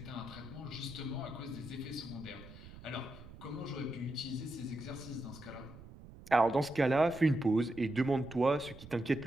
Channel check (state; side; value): noise; right; rumble, 17 dB below the sound